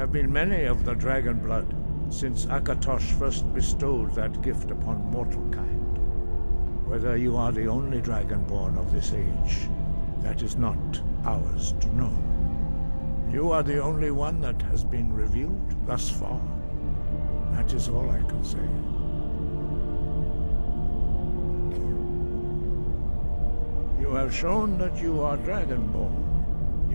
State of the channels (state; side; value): inverted; both; correlation -1.00